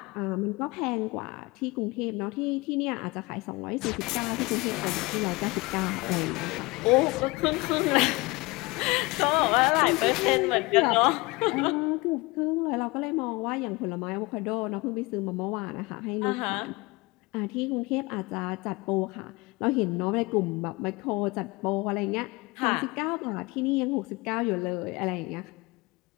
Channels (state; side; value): quieter; right; 23.7 dB